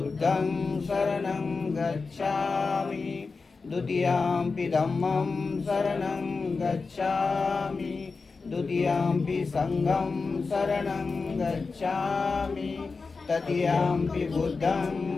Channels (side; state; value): right; quieter; 4.4 dB